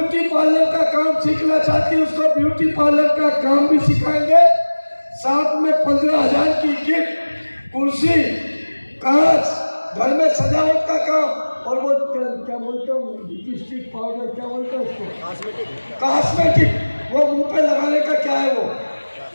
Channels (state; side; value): inverted; both; correlation -1.00